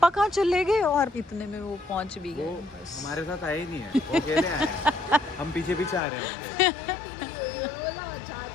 कहाँ चले गए? और इतने में वो पहुंच भी वो गए। हमारे साथ आए ही नहीं है, वो अकेले आए हैं। हम पीछे पीछे आ रहे हैं।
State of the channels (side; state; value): right; drops out; at 6.0 s